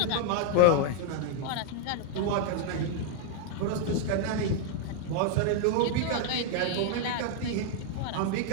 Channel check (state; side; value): different; both; correlation 0.00